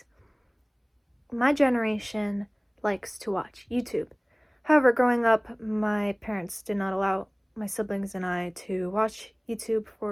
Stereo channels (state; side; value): identical; both; correlation 1.00